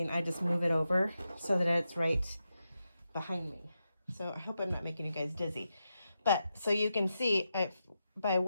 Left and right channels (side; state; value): both; inverted; correlation -0.87